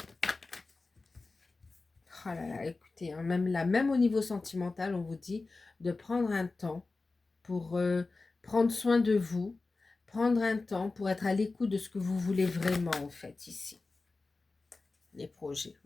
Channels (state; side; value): quieter; right; 3.7 dB